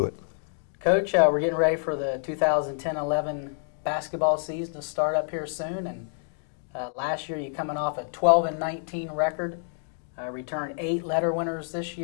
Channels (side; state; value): right; silent; 60 dB below the other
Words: it. Coach, we're getting ready for the 2010-11 basketball season to start up here soon, and last year you coming off a 12-19 record, returned 8 letter winners this